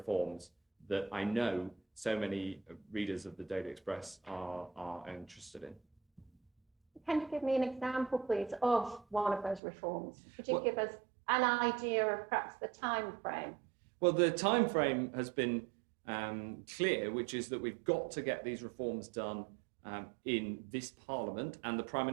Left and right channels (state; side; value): drops out; left; at 9.6 s